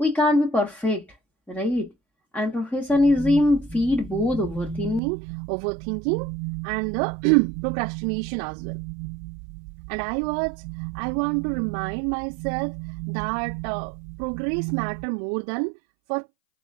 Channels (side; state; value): left; drops out; at 5.0 s